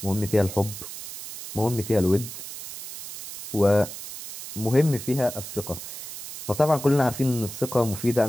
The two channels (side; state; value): right; noise; hiss, 11 dB below the sound